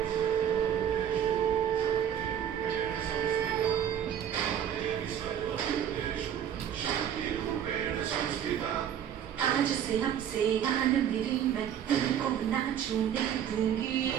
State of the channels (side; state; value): left; quieter; 9.4 dB